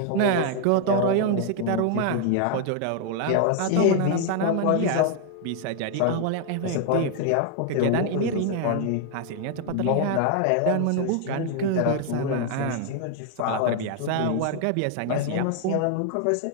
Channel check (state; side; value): different; both; correlation 0.00